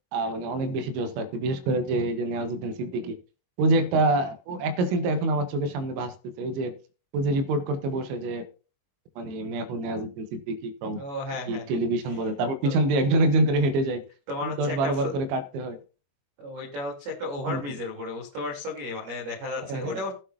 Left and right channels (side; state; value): left; late; 22 ms